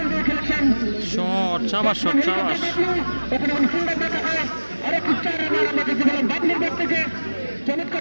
খেলেছেন শট চাবা শট চাবাস সুন্দর দেখা হয় আরেকটি 4 রান আমাদের জীবনে বাবলুর ব্যাট থেকে চমৎকার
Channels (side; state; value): both; inverted; correlation -1.00